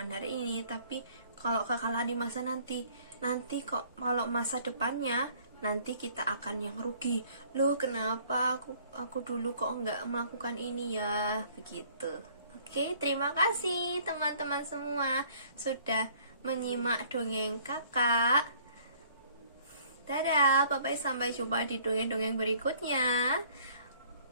hari ini. Tapi kalau kekalahan di masa nanti kok kalau masa depannya nanti kita akan yang rugi. Loh, kenapa aku dulu kok nggak melakukan ini ya? Begitu. Oke, terima kasih teman-teman semua sudah menyimak dongeng kakak. Dadah, bye-bye, sampai jumpa di dongeng-dongeng berikutnya.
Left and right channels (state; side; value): inverted; both; correlation -0.57